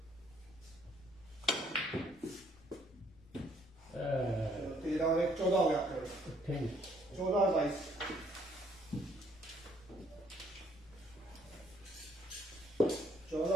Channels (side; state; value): left; noise; rumble, 25 dB below the sound